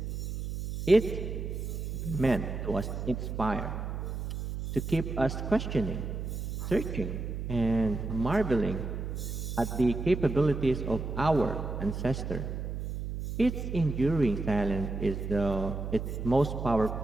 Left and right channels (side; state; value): right; noise; hum, 5 dB below the sound